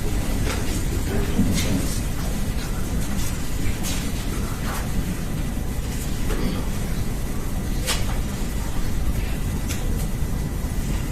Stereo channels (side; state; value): both; identical; correlation 1.00